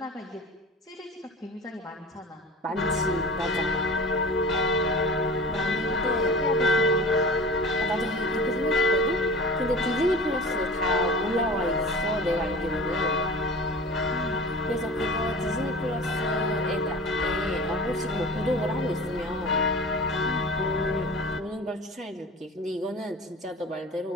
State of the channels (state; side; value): normal; both; correlation 0.37